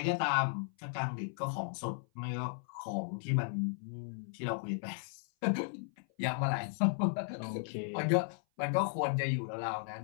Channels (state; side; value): silent; right; 54 dB below the other